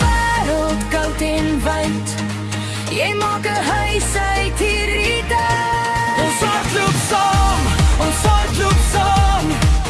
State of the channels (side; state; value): both; identical; correlation 1.00